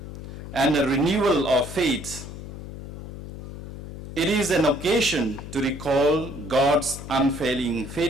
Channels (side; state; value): left; noise; hum, 11 dB below the sound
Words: and a renewal of faith. It is an occasion to recall God's unfailing